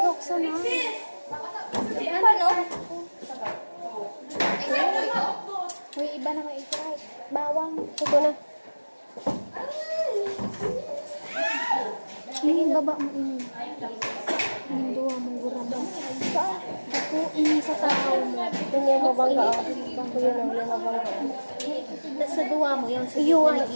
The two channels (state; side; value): inverted; both; correlation -1.00